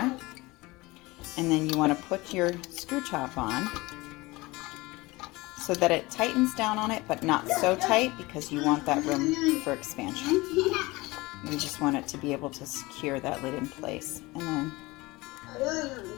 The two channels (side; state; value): right; quieter; 21.8 dB